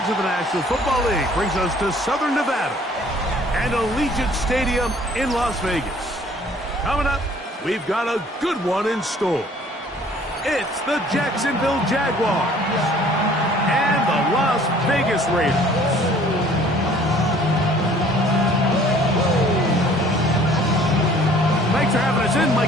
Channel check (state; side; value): normal; both; correlation 0.55